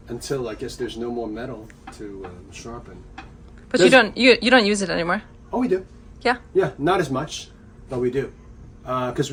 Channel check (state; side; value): identical; both; correlation 1.00